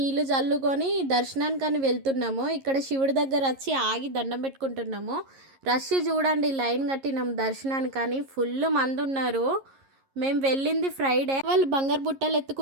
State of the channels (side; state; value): left; late; 11 ms